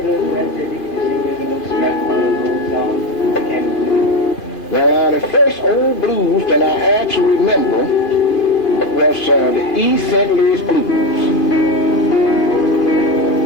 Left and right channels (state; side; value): late; right; 2.5 ms